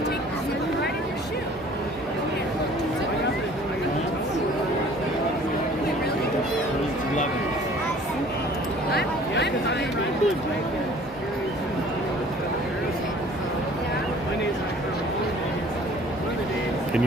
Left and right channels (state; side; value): normal; both; correlation 0.51